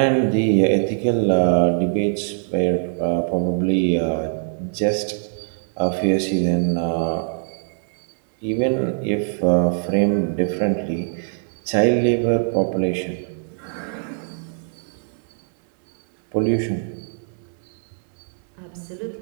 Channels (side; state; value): left; silent; digital silence